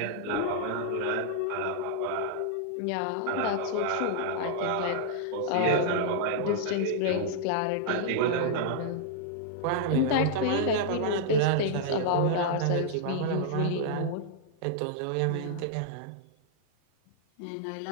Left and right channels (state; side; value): different; both; correlation -0.01